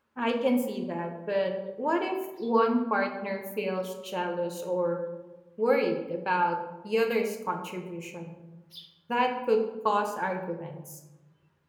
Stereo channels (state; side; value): identical; both; correlation 1.00